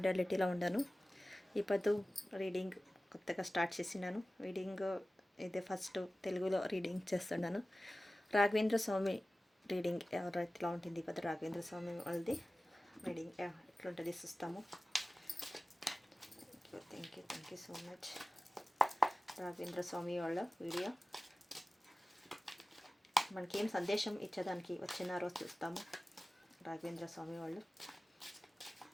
ఉన్నాను. ఇప్పుడు రీడింగ్ కొత్తగా స్టార్ట్ చేసినాను. రీడింగ్ ఇదే ఫస్ట్ తెలుగులో రీడింగ్ చేస్తున్నాను. రాఘవేంద్ర స్వామి రీడింగ్ ఎవరైతే ఉంటుంది. ఇప్పుడు రాఘవేంద్ర స్వామి వాళ్ళది రీడింగ్ ఎట్లుంటుంది చూస్తాము. Thank you so much. Raghavendra Swami వాళ్ళ వీడియో మనకేం సందేశం ఇచ్చేదానికి వచ్చినారో చూస్తాము. రాఘవేంద్ర స్వామి వాళ్ళు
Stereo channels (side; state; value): both; normal; correlation 0.96